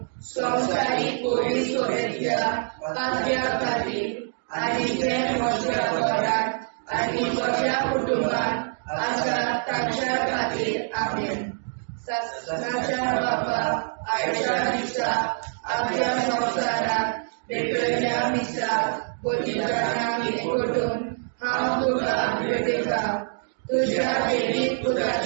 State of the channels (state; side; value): silent; left; digital silence